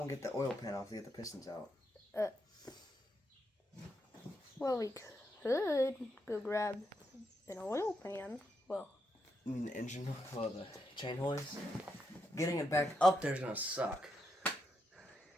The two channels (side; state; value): both; normal; correlation 0.82